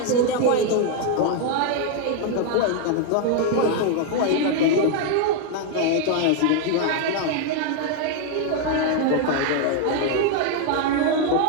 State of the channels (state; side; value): different; both; correlation 0.00